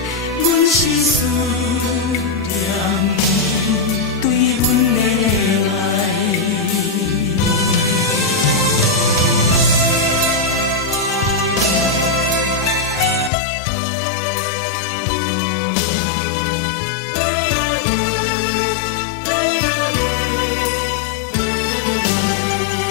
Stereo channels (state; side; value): drops out; right; at 13.3 s